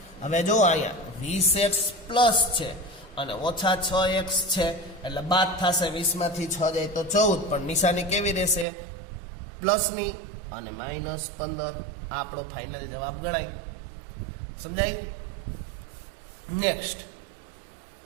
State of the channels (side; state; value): left; drops out; at 8.7 s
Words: હવે જો અહીંયા 20x પ્લસ છે અને ઓછા 6x છે એટલે બાદ થશે 20માંથી 6 જાય તો 14 પણ નિશાની કેવી રહેશે પ્લસની અને -15. આપણો ફાઇનલ જવાબ ગણાય. સમજાય. નેક્સ્ટ